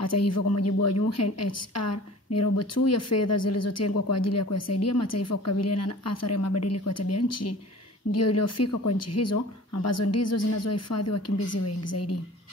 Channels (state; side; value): normal; both; correlation 0.44